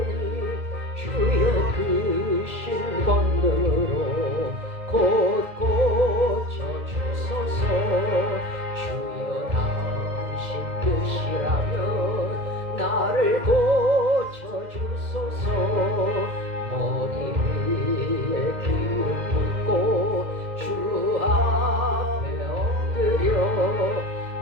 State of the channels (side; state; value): left; late; 2.0 ms